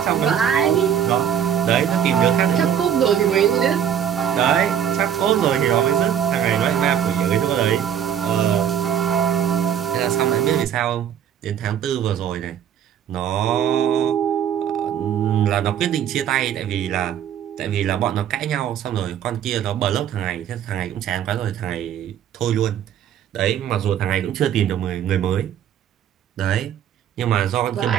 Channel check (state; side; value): quieter; left; 9.3 dB